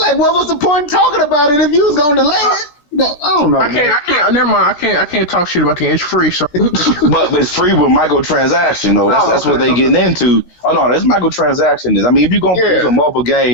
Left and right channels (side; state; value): right; late; 13 ms